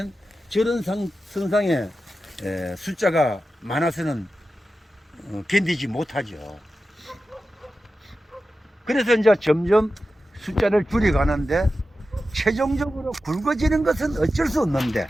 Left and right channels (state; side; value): normal; both; correlation 0.92